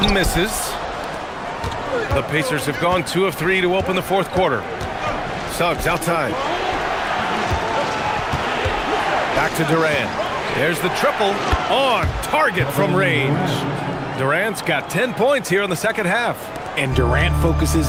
misses. The Pacers have gone 2 of 3 to open the fourth quarter. Suggs outside. Back to Durant. There's the triple on target from range. Durant's got 10 points here in the second half. And Durant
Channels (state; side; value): identical; both; correlation 1.00